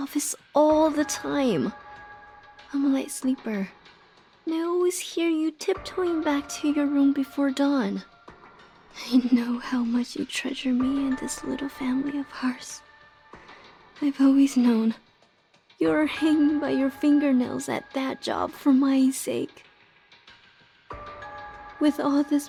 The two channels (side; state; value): both; identical; correlation 1.00